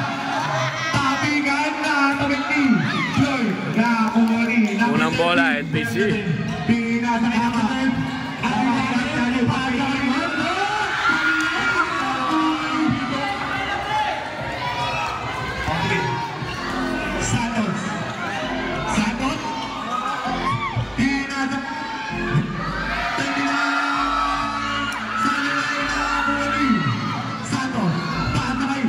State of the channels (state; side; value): identical; both; correlation 1.00